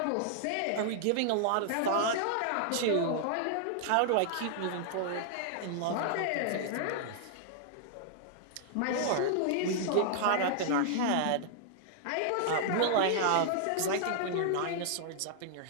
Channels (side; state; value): both; different; correlation -0.01